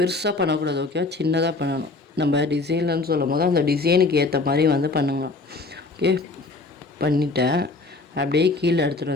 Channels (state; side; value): quieter; right; 3.5 dB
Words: பண்ணக்கூடாது. ஓகேவா? சின்னதாக பண்ணணும். நம்ம டிசைன்லன்னு சொல்லும் போது அந்த டிசைனுக்கு ஏற்ற மாதிரி வந்து பண்ணுங்க. ஓகே, பண்ணிட்டேன். அப்படியே கீழே எடுத்துகிட்டு